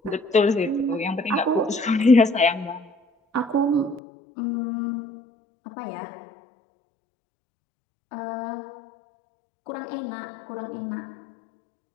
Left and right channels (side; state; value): right; drops out; at 4.0 s